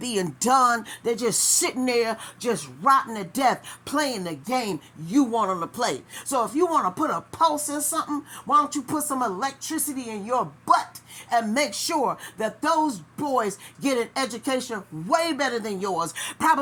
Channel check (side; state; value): both; identical; correlation 1.00